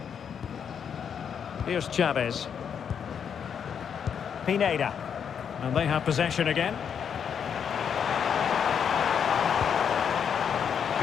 Here's Chavez. Pineda. And they have possession again.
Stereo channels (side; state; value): right; quieter; 7.6 dB